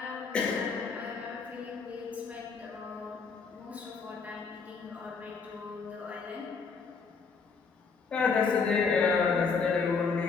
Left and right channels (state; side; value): quieter; right; 5.2 dB